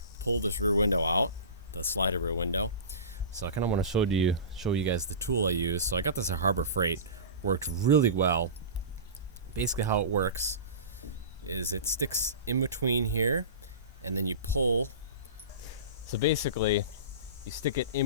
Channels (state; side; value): inverted; both; correlation -0.31